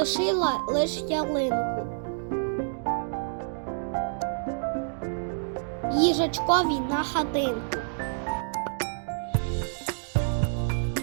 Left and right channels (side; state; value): left; silent; digital silence